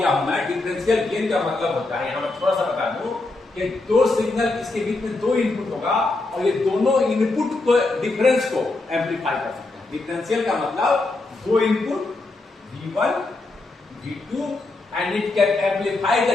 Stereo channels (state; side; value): quieter; right; 3.2 dB